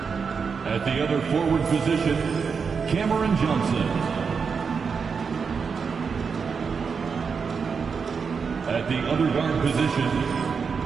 At the other forward position, Cameron Johnson. At the other guard position,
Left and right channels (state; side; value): quieter; left; 5.7 dB